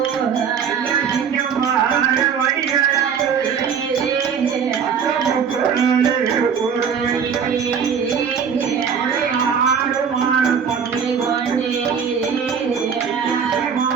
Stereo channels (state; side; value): quieter; left; 7.0 dB